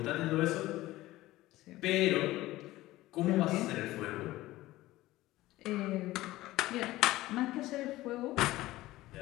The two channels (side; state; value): right; quieter; 17.2 dB